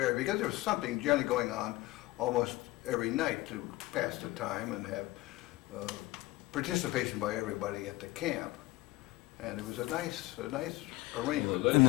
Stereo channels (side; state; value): right; quieter; 19.2 dB